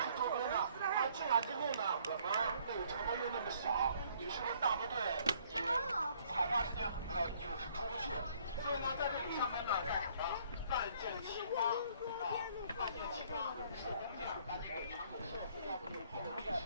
周边呢？进来之后呢，我们这个城门又那么小，你是不是大部队也踩踏时间就是出不去？所以呢，在这里上面呢干什么？万箭齐发啊，万箭齐发，手工匠把这个长城线，要不就跑历史。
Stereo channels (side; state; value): both; inverted; correlation -0.61